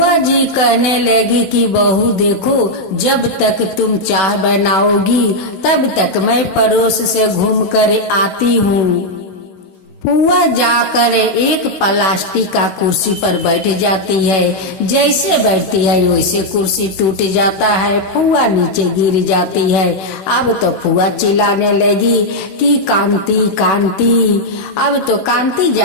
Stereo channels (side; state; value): right; late; 16 ms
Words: जी कहने लगी कि बहू देखो, जब तक तुम चाय बनाओगी तब तक मैं पड़ोस से घूम कर आती हूँ। फुआ जाकर एक प्लास्टिक का कुर्सी पर बैठ जाती है, जैसे बैठती है वैसे कुर्सी टूट जाता है, फुआ नीचे गिर जाती है। अब तो फुआ चिल्लाने लगी कि कांति कांति। अब तो कांति